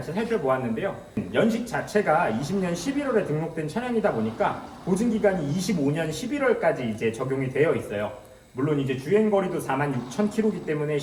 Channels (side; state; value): both; identical; correlation 1.00